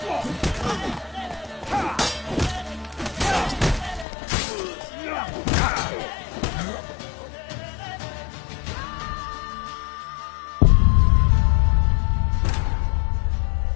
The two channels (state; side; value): drops out; right; at 4.0 s